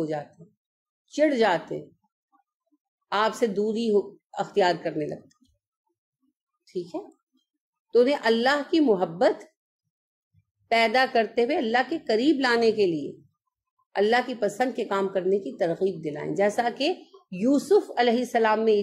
جاتے ہیں، چڑ جاتے ہیں، آپ سے دوری اختیار کرنے لگتے ہیں. ٹھیک ہے، تو انہیں اللہ کی محبت پیدا کرتے ہوئے اللہ کے قریب لانے کے لیے اللہ کی پسند کے کام کرنے کی ترغیب دلائیں. جیسا کہ یوسف علیہ السلام میں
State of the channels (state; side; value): identical; both; correlation 1.00